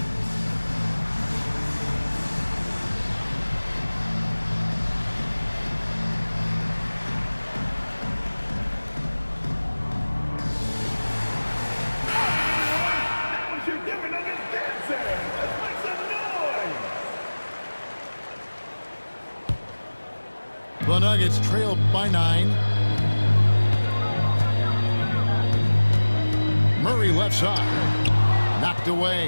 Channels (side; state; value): both; inverted; correlation -1.00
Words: The Nuggets trail by 9. Murray left side. Knocked